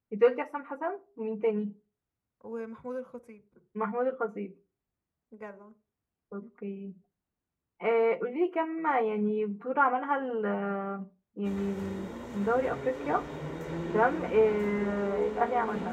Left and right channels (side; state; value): both; identical; correlation 1.00